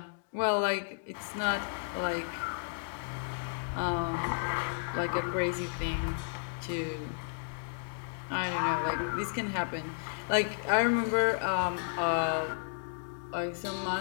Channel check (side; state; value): right; silent; digital silence